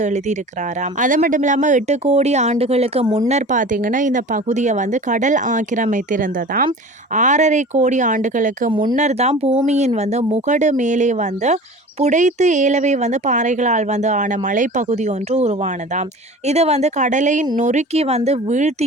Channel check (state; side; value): normal; both; correlation 0.38